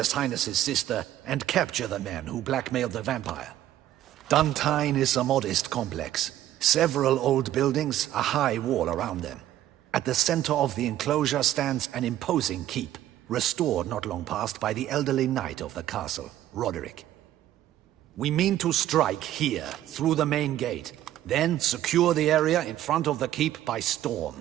Highness's sister and capture the man who blackmailed the vampire. Duntine is a modest complex. Several old buildings, a high wall around them. At the center of the enclosure stands an imposing keep, restored not long past by the elderly knight of the castle, Roderick. We mean to strike here, through the main gate, then secure the area in front of the keep by storm.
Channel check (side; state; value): left; quieter; 12.9 dB